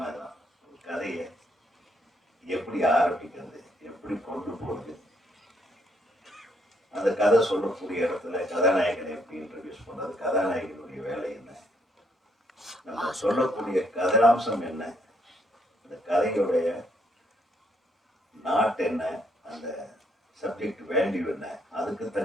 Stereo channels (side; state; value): both; normal; correlation 0.71